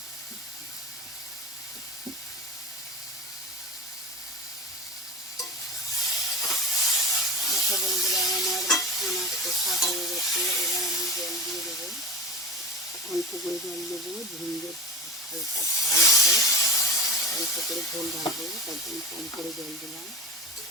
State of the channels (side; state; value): both; normal; correlation 0.31